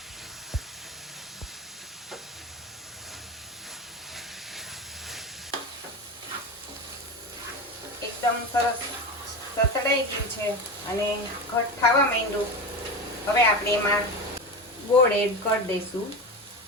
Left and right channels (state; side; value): normal; both; correlation 0.23